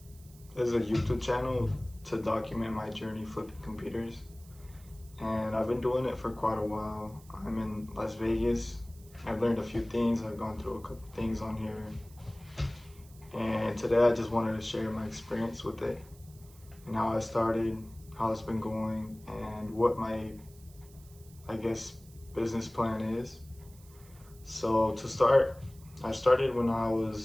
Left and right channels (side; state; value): right; noise; hiss, 24 dB below the sound